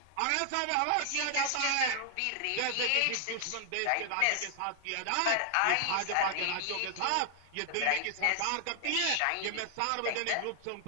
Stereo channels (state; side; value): different; both; correlation 0.00